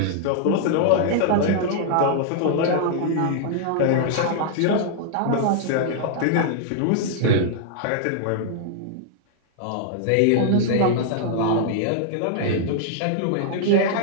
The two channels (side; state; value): both; different; correlation -0.01